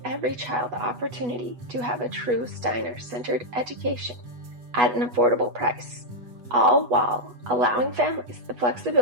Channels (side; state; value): left; late; 8.2 ms